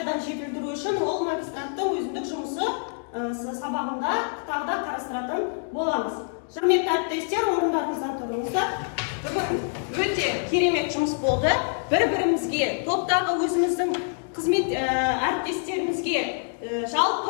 жетілдіру үшін ол магистранттың өзіндік жұмысы сабағында тағы да қарастыратын боламыз. Құрметті әріптестер, орындарыңыздан тұрыңыздар. Бүгін өте керемет жұмыс болды. Бір-бірімізге, топтағы өзіміздің қызмет әріптестерімізге,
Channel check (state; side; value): silent; right; 61 dB below the other